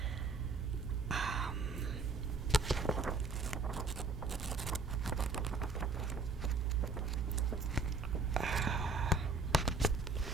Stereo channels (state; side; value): quieter; left; 3.9 dB